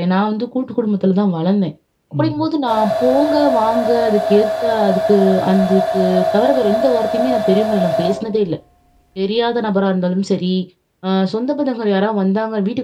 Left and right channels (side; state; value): both; identical; correlation 1.00